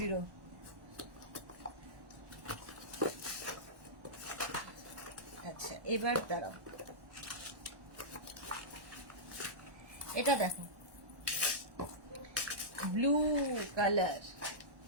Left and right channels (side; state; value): left; late; 1.1 ms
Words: আচ্ছা এবার দাঁড়াও, এটা দেখো ব্লু কালার,